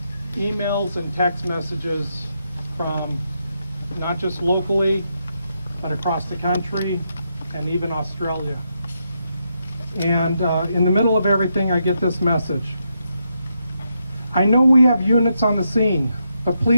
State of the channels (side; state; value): both; inverted; correlation -0.81